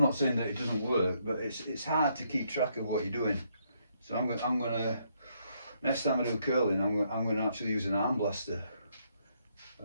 not saying that it doesn't work, but it's hard to keep track of what you're doing. So I'm gonna next time I do curling, I'm gonna actually use an arm blaster.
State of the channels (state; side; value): inverted; both; correlation -0.73